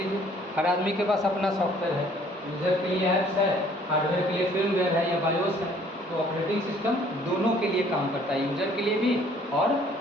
हर आदमी के पास अपना सॉफ्टवेयर है। यूजर के लिए ऐप्स है, हार्डवेयर के लिए फिर्मवेयर है या बायोस है। तो ऑपरेटिंग सिस्टम दोनों के लिए काम करता है, यूजर के लिए भी और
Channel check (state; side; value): normal; both; correlation 0.58